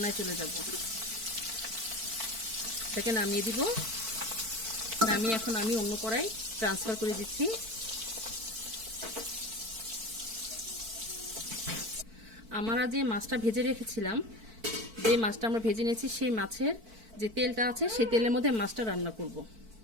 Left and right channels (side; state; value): left; late; 4.5 ms